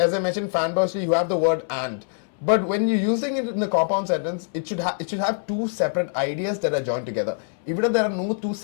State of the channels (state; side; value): silent; right; 63 dB below the other